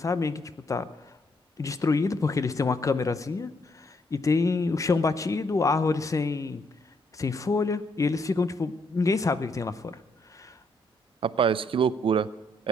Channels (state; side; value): normal; both; correlation 0.72